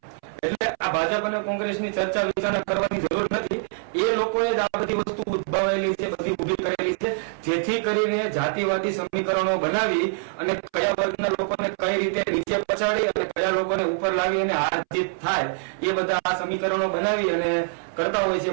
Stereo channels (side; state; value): left; silent; 62 dB below the other